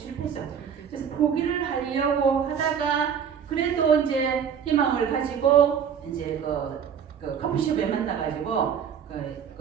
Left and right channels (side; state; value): left; quieter; 7.6 dB